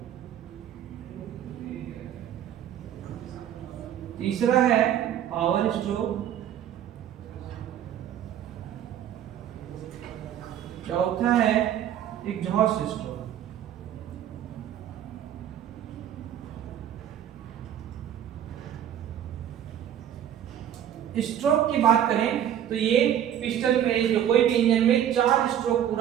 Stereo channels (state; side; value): quieter; left; 10.5 dB